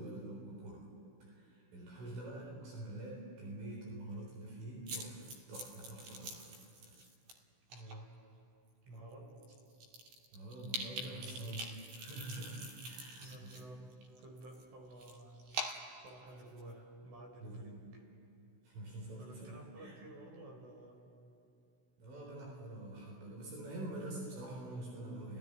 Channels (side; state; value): left; late; 16 ms